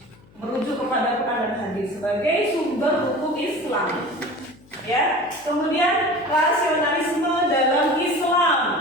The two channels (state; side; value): noise; left; hum, 27 dB below the sound